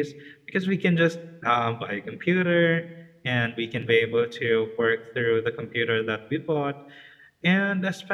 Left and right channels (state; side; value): identical; both; correlation 1.00